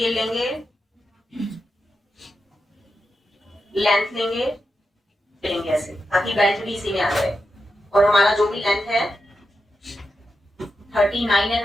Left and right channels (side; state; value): both; normal; correlation 0.88